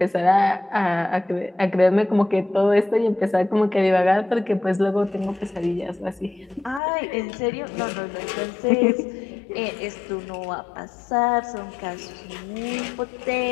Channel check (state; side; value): drops out; right; at 6.8 s